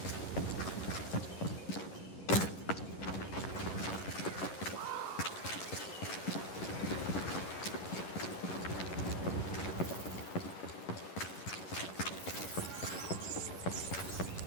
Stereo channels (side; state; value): right; late; 11 ms